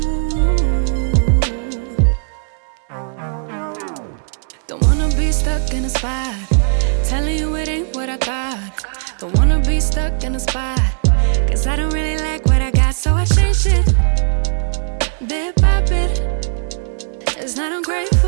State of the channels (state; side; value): silent; left; digital silence